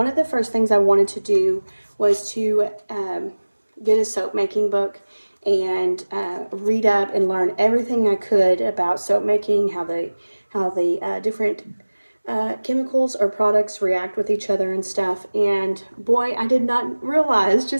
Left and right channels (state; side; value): inverted; both; correlation -1.00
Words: of the first things I wanted to do was to get a soap making book and read up and learn everything I could about soap making, how the different chemicals or products react with each other and stuff. And boy, I did not realize